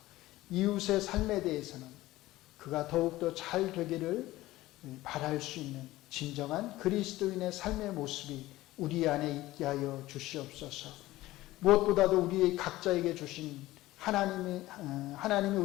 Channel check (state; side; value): quieter; right; 17.2 dB